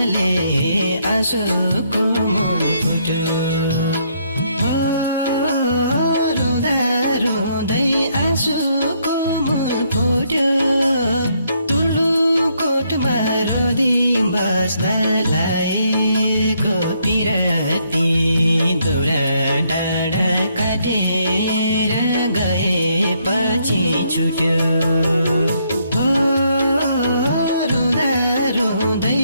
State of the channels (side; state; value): both; inverted; correlation -0.72